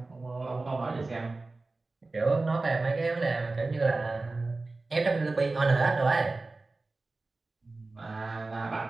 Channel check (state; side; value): quieter; left; 3.4 dB